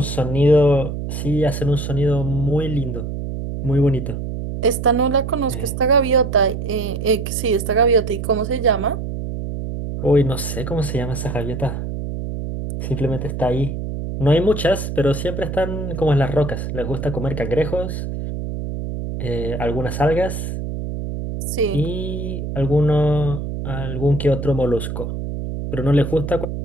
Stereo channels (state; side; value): noise; right; hum, 5 dB below the sound